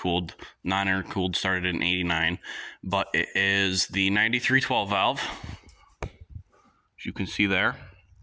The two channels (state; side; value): identical; both; correlation 1.00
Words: Non-intercooled started in '89, but it is the 93 12 valve, as you can see there.